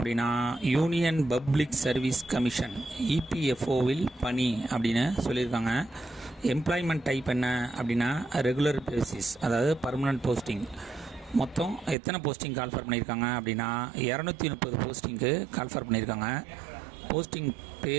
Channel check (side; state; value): left; drops out; at 12.0 s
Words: யூனியன் பப்ளிக் சர்வீஸ் கமிஷன் இபிஎஃப்ஓவில் பணி அப்படின்னு சொல்லியிருக்காங்க. எம்ப்ளாய்மெண்ட் டைப் என்ன அப்படின்னா ரெகுலர் பேசிஸ், அதாவது பர்மனன்ட் போஸ்டிங். மொத்தம் எத்தனை போஸ்டிங் கால்ஃபர் பண்ணியிருக்காங்க அப்படின்னா 230 போஸ்டிங்க்கு கால்ஃபர் பண்ணியிருக்காங்க. போஸ்டிங்